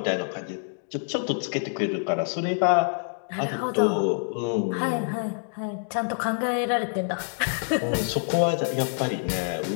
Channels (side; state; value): right; silent; 61 dB below the other